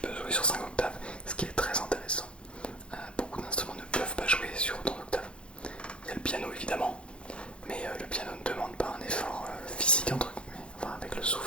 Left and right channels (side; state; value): right; late; 0.057 ms